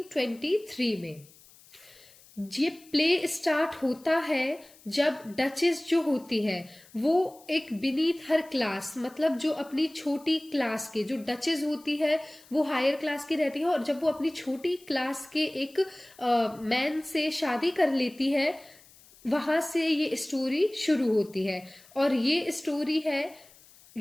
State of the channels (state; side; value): noise; left; hiss, 25 dB below the sound